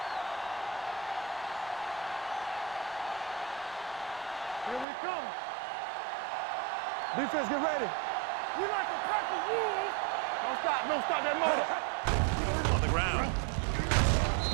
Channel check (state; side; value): drops out; left; at 4.9 s